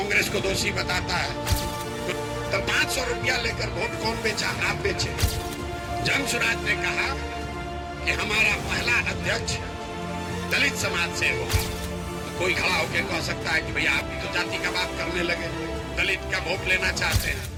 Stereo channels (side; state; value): both; identical; correlation 1.00